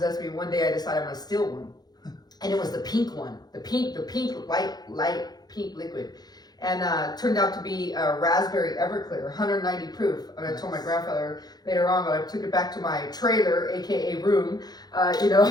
me. One day I decided I'm gonna steal one. And it was the pink one, the pink light pink liquid. And turned out to be a raspberry Everclear, 190 proof. And I told my grandfather later on, but I took it back to my trailer, AKA room,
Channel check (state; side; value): late; right; 0.19 ms